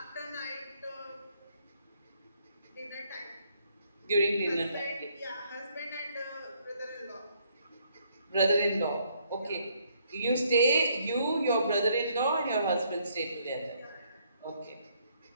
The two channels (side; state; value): both; inverted; correlation -0.68